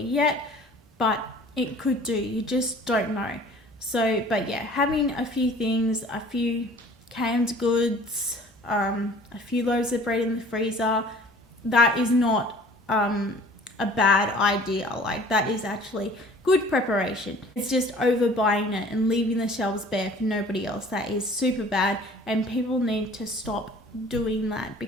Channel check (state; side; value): normal; both; correlation 0.49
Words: but it could do. You just don't know. So, but yeah, having a few things, a few canned goods, a few loaves of bread in the freezer, that is not a bad idea. Like, that is actually good preparation. It's just overbuying it and leaving the shelves bare for nobody else. That is super bad, and people need to stop doing that,